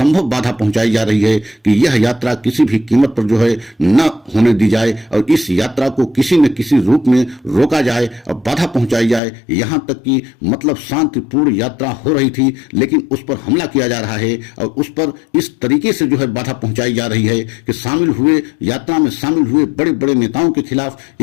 बाधा पहुंचाई जा रही है कि यह यात्रा किसी भी कीमत पर जो है न होने दी जाए और इस यात्रा को किसी न किसी रूप में रोका जाए और बाधा पहुंचाई जाए। यहां तक कि मतलब शांतिपूर्ण यात्रा हो रही थी, लेकिन उस पर हमला किया जा रहा है और उस पर इस तरीके से जो है बाधा पहुंचाई जा रही है कि यात्रा में शामिल हुए बड़े बड़े नेताओं के खिलाफ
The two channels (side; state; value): right; drops out; at 9.2 s